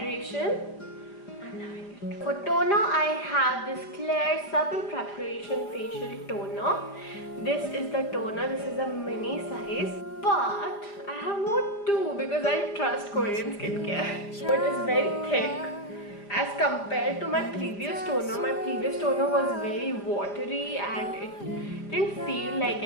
I'm loving it. For toner, I have this Claire Supple Preparation Facial Toner. This is the toner, this is a mini size. But I have more too because I trust Korean skincare. So it is very thick. As compared to my previous toner was very watery and it didn't feel like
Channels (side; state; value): right; late; 4.9 ms